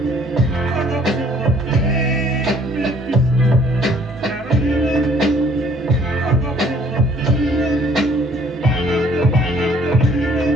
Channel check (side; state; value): both; normal; correlation 0.60